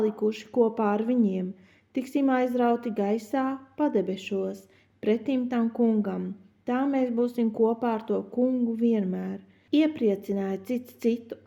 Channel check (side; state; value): both; identical; correlation 1.00